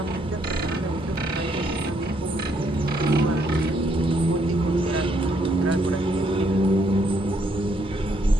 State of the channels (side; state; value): both; normal; correlation 0.72